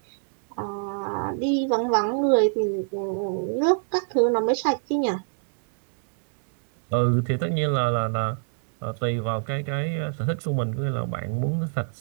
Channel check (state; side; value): silent; left; 58 dB below the other